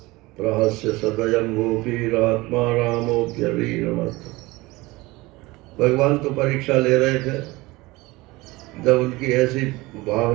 प्रहस्य सदयं गोपीरात्मा रामोऽप्यवीरमत्। भगवान तो परीक्षा ले रहे थे, जब उनकी ऐसी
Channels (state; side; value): quieter; left; 21.4 dB